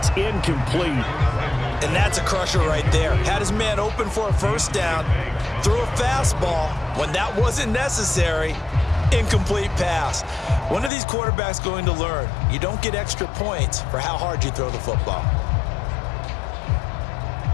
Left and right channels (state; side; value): drops out; right; at 10.9 s